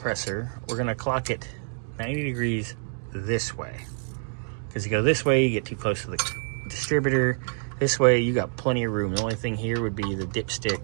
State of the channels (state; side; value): silent; left; digital silence